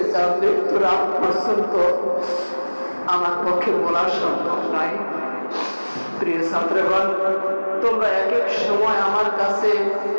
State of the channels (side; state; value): both; inverted; correlation -1.00